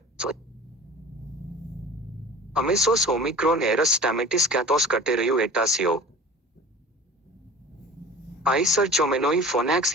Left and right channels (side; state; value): both; normal; correlation 0.40